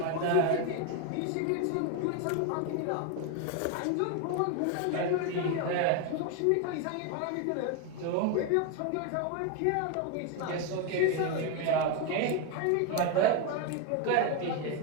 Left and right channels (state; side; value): different; both; correlation 0.02